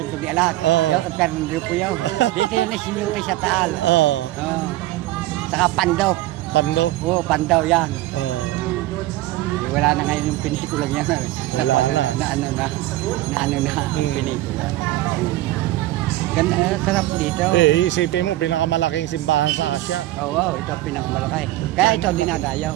de Alas. Yung Fernando po yun. Dito yun sinuti sa Taal. Saka Pando. Pandaw yan. Wala na ngayon yung pinikula niya. Wala na. Na pinikula. Ganda, sarap dito. Isipin mo, pinakamalaking simbahan sa Asia. Ito pinakamalaki. Kaya ito dinadayaw.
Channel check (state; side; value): quieter; left; 16.5 dB